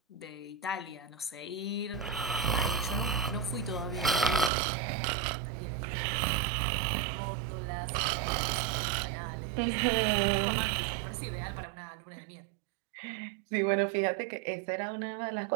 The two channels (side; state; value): left; drops out; at 4.5 s